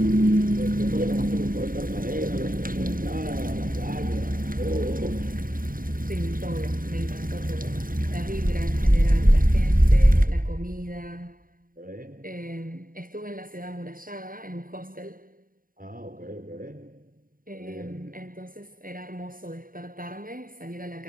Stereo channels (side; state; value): left; late; 0.41 ms